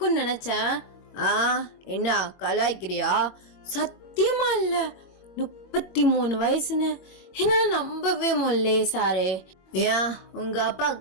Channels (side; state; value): right; late; 21 ms